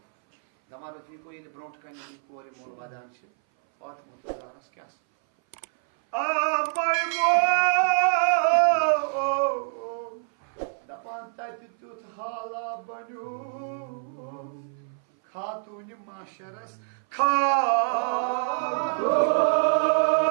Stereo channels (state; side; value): silent; left; 58 dB below the other